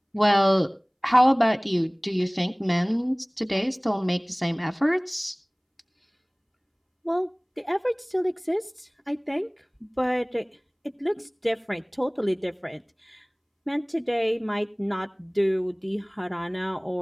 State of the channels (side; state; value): both; identical; correlation 1.00